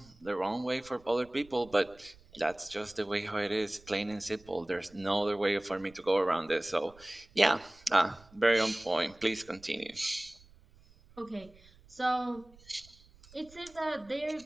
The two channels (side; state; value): right; noise; rumble, 26 dB below the sound